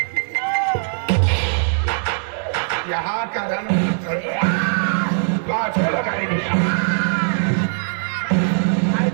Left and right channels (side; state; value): left; silent; 63 dB below the other